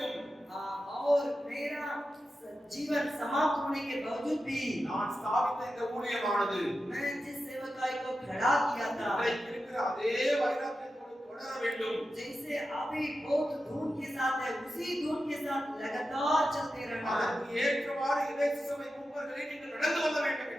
और मेरा जीवन समाप्त होने के बावजूद भी நான் ஸ்தாபித்த இந்த ஊழியமானது मैं जिस सेवकाई को खड़ा किया था, இன்றைக்கு இருக்கிற அதே வைராக்கியத்தோடு தொடர வேண்டும். जैसे अभी बहुत धूम के साथ है, उसी धूम के साथ लगातार चलते रहना। அதற்கு ஏற்றவாறு இறை சபை மூப்பர்களை நீங்கள் நடந்து வர வேண்டும்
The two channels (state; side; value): normal; both; correlation 0.91